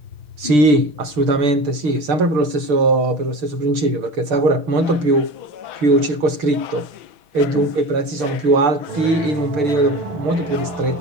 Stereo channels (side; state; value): left; late; 6.7 ms